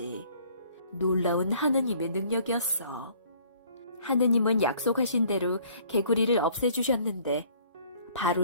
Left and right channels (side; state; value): both; inverted; correlation -0.57